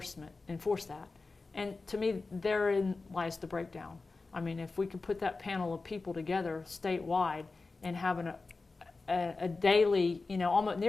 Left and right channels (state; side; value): quieter; right; 3.8 dB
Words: that. And to me, therein lies the breakdown. I mean, if we could put that panel of people together statewide and having a daily, almost